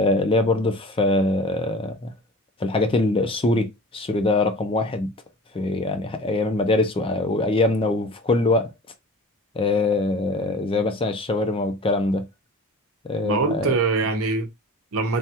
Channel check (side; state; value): both; normal; correlation 0.39